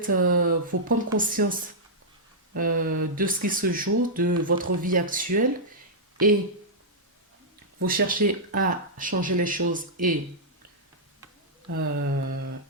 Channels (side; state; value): both; normal; correlation -0.09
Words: vous prendre conscience de ce qui se joue, de votre vie actuelle et vous cherchez à changer les choses et